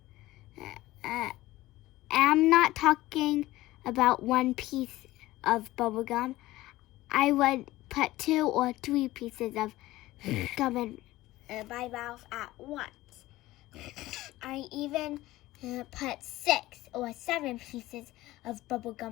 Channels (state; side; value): quieter; right; 17.3 dB